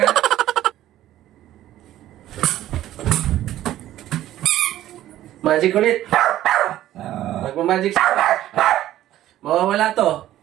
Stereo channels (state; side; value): quieter; left; 13.5 dB